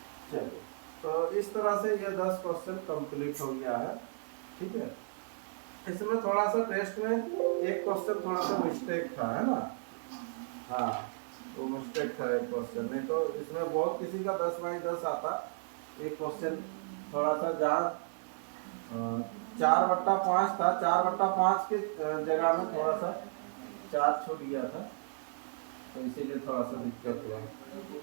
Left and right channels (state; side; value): silent; left; 55 dB below the other